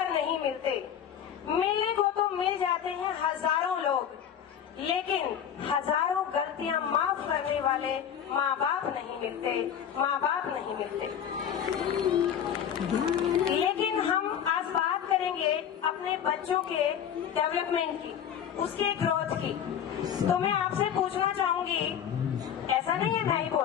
नहीं मिलते। मिलने को तो मिल जाते हैं हजारों लोग, लेकिन हजारों गलतियां माफ करने वाले माँ बाप नहीं मिलते, माँ बाप नहीं मिलते। लेकिन हम आज बात करेंगे अपने बच्चों के डेवलपमेंट की, उसके ग्रोथ की। तो मैं आपसे पूछना चाहूंगी, ऐसा नहीं है मैं ही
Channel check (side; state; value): right; quieter; 8.9 dB